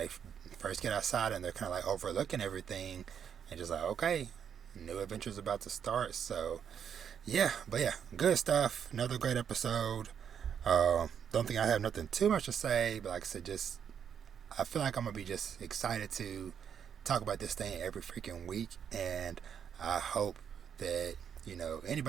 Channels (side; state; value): left; quieter; 8.0 dB